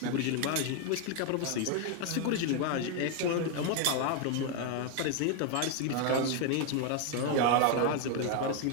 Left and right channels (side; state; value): both; different; correlation 0.01